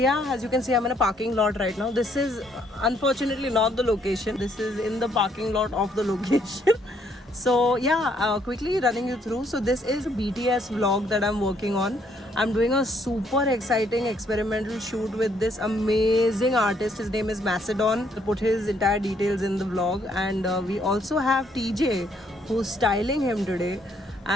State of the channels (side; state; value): both; normal; correlation 0.69